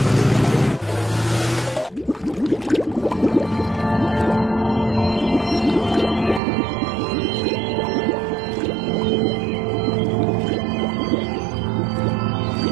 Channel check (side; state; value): left; drops out; at 6.4 s